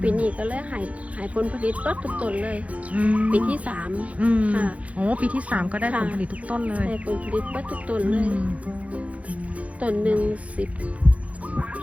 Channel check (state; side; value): late; left; 0.066 ms